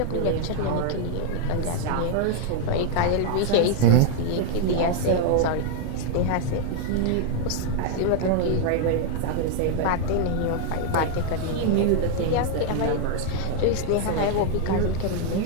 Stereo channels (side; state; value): both; different; correlation 0.00